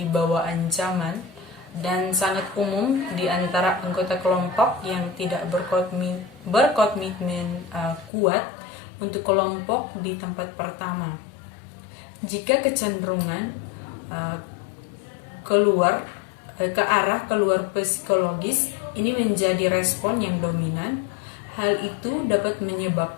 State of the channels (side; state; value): right; drops out; at 8.1 s